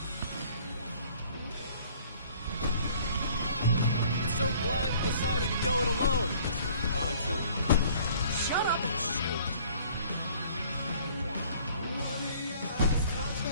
So glad you decided to go it alone, Mr. Bronson. Shut up and shoot!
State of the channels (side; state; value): both; inverted; correlation -0.55